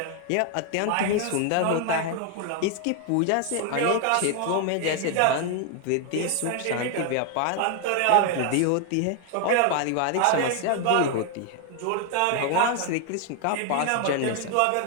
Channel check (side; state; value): both; different; correlation 0.00